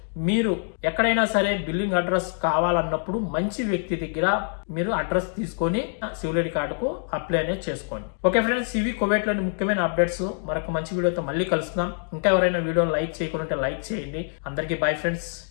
మీరు ఎక్కడైనా సరే బిల్లింగ్ అడ్రస్ కావాలన్నప్పుడు మంచి వ్యక్తి దగ్గర మీరు అడ్రస్ తీసుకొని సివిల్ ఐడి కార్డుకు అప్లై అనేది చేసుకోండి. ఓకే ఫ్రెండ్స్, ఇవి కువైట్ లోని ముఖ్యమైన అప్డేట్స్. మరొక మంచి వీడియోతో మళ్ళీ కలుస్తున్నాం. ఇంకా ఎవరైనా వీడియోని లైక్ చేయకుండా లైక్ చేయండి. అందరికీ బై ఫ్రెండ్స్,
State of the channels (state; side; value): silent; right; 62 dB below the other